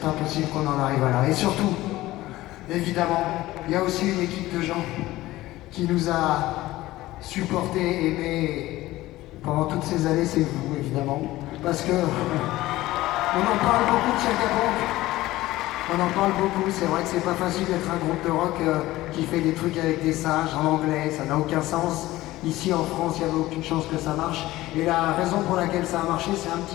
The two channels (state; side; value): quieter; right; 17.1 dB